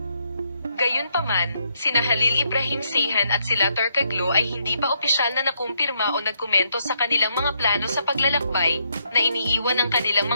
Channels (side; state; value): both; inverted; correlation -0.75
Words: Gayunpaman, sina Halil Ibrahim Ceyhan at sila Turkoglu ay hindi pa opisyal na nakumpirma o nagkomento sa kanilang mga plano sa paglalakbay, na iniiwan ng kanilang